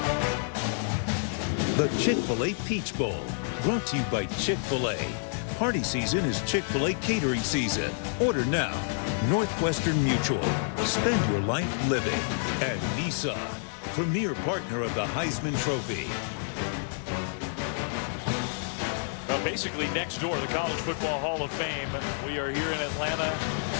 The Chick-fil-A Peach Bowl, brought to you by Chick-fil-A. Party season is Chick-fil-A catering season. Order now. Northwestern Mutual. Spend your life living. And Nissan, premier partner of the Heisman Trophy. Basically next door, the College Football Hall of Fame. We are here in Atlanta,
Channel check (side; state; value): right; silent; digital silence